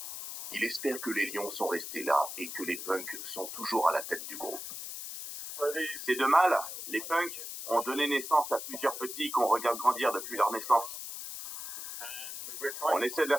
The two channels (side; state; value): left; noise; hiss, 8 dB below the sound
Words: Il espère que les lions sont restés là et que les punks sont toujours à la tête du groupe. Ces 2 mâles, les punks, ont donné naissance à plusieurs petits qu'on regarde grandir depuis leur naissance. On essaie de les